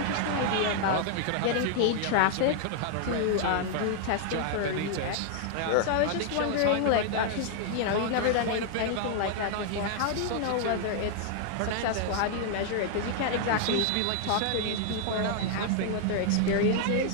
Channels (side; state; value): both; different; correlation 0.00